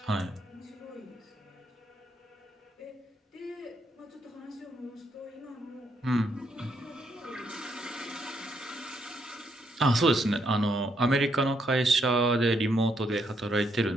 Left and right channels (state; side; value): normal; both; correlation 0.75